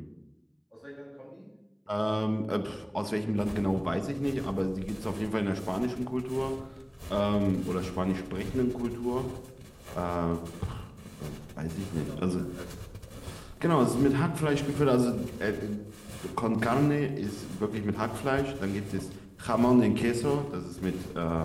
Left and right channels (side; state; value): both; identical; correlation 1.00